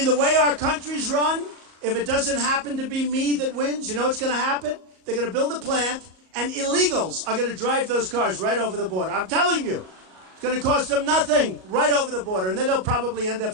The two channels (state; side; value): late; left; 38 ms